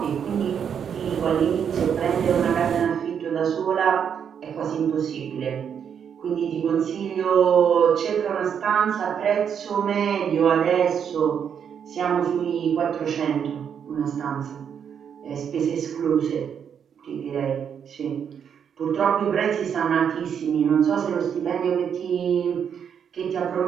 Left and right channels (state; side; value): quieter; left; 7.8 dB